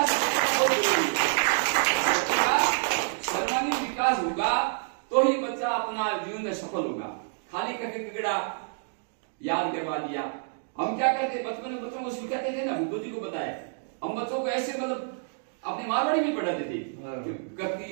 बहुत जरूरी है। सर्वांगीण विकास होगा तो ही बच्चा अपना जीवन में सफल होगा। खाली करके किकड़ा याद करवा दिया। हम क्या करते बचपन में बच्चों को सिखाते थे ना, बुद्धू जी को बताया, हम बच्चों को ऐसे मतलब अपनी मारवाड़ी में पढ़ाते थे।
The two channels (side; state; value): left; silent; digital silence